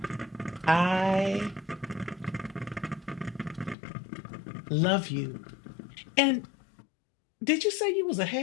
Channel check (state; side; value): drops out; right; at 3.8 s